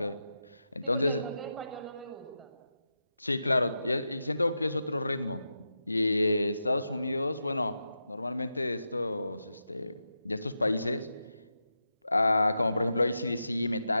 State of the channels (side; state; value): both; inverted; correlation -0.89